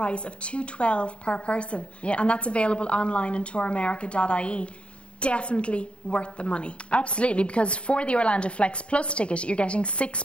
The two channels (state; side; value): late; right; 0.060 ms